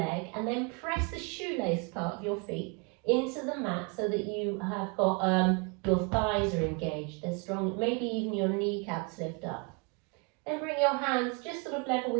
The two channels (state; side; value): quieter; left; 32.7 dB